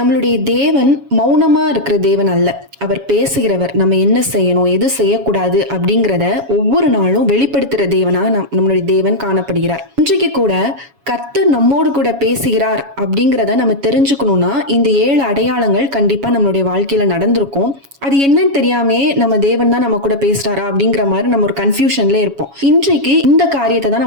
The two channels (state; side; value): late; left; 7.2 ms